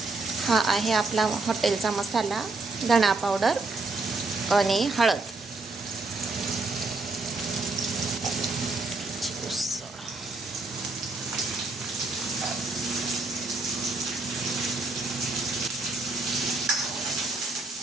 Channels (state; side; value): quieter; left; 3.4 dB